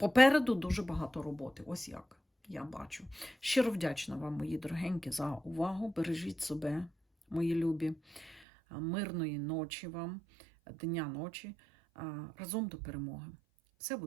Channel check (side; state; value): left; drops out; at 8.4 s